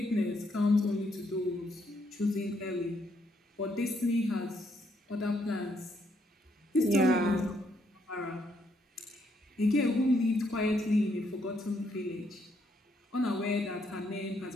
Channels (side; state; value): both; normal; correlation 0.73